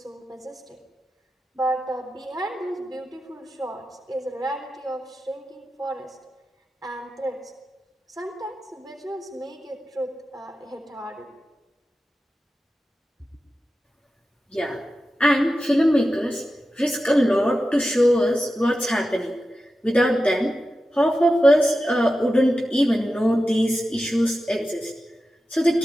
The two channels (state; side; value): normal; both; correlation 0.92